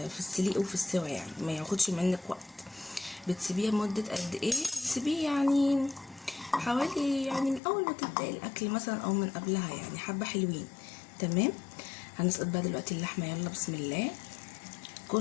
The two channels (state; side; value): drops out; right; at 7.6 s